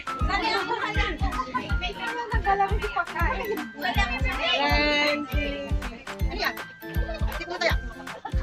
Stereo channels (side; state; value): both; identical; correlation 1.00